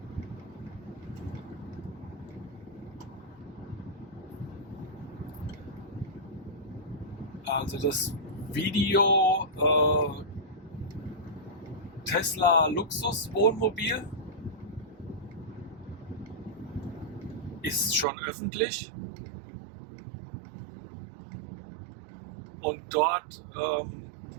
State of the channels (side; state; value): left; drops out; at 18.1 s